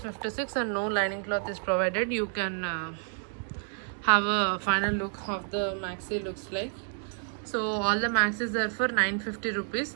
and no lining cloth is provided. You can have a final look of the maxi looks like. So all the maxis are for 950 rupees.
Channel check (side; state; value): left; silent; 58 dB below the other